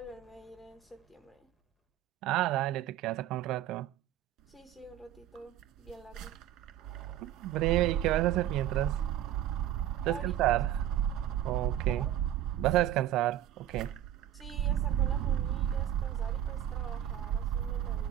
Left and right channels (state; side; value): quieter; left; 11.8 dB